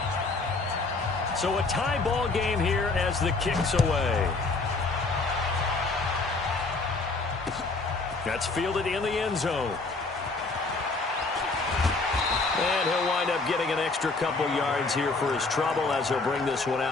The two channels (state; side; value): quieter; right; 3.7 dB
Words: So a tie ball game here as the kick's away. That's fielded in the end zone. And he'll wind up getting an extra couple yards here for his trouble as he'll bring this one